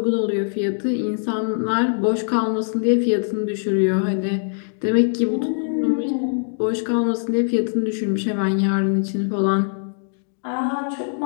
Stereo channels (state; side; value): silent; right; digital silence